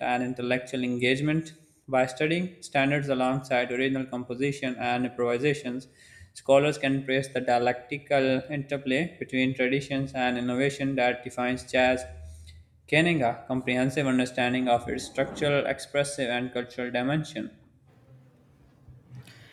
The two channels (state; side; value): identical; both; correlation 1.00